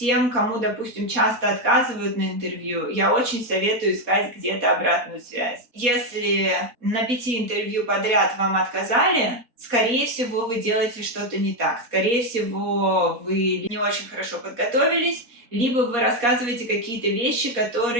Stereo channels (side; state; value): left; late; 4.1 ms